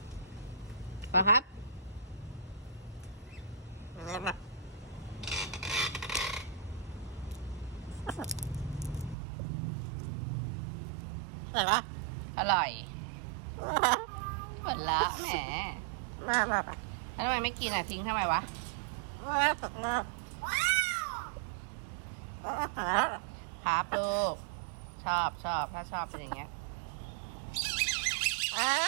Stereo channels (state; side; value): drops out; left; at 9.2 s